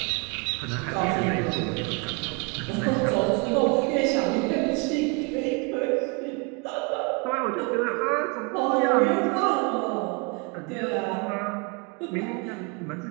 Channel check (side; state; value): left; quieter; 31.0 dB